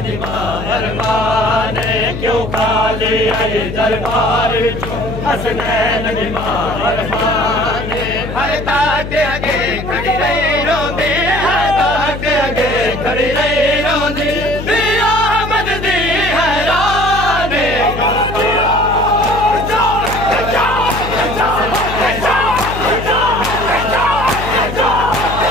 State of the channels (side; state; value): left; noise; hum, 8 dB below the sound